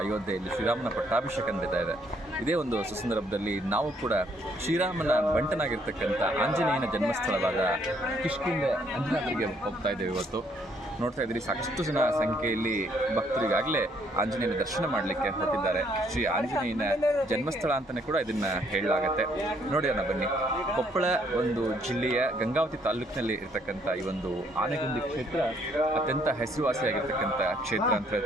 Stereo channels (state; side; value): normal; both; correlation 0.68